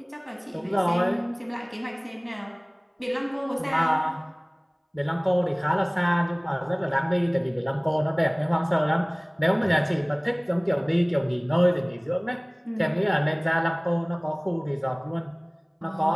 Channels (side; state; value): both; identical; correlation 1.00